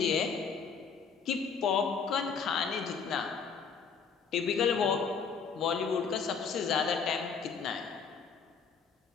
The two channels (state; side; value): quieter; right; 5.9 dB